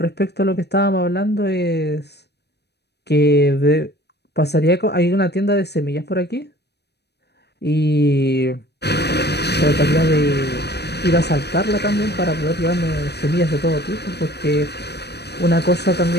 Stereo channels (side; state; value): right; late; 0.48 ms